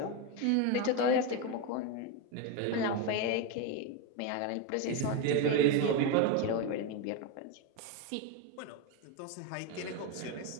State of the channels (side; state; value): both; different; correlation 0.03